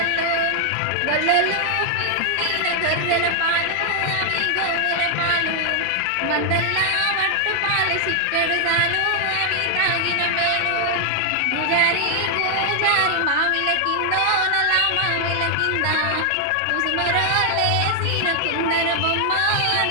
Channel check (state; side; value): different; both; correlation 0.00